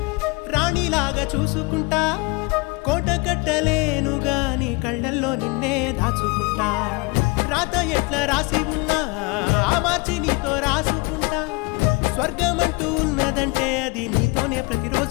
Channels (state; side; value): quieter; right; 27.5 dB